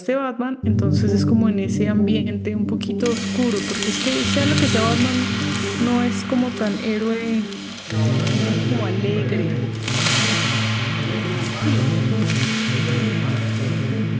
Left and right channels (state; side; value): identical; both; correlation 1.00